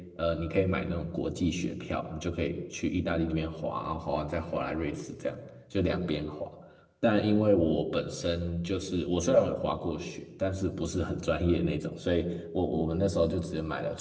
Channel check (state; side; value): identical; both; correlation 1.00